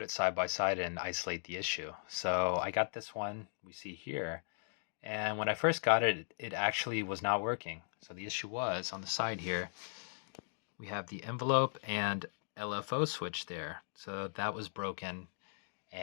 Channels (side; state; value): right; silent; digital silence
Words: it side by side, and isolate the issue. So I got this one we see here, and when I first got it, it actually was not working. So the issue was on the side here, we have the envelope and LFO switch there. So that was broken,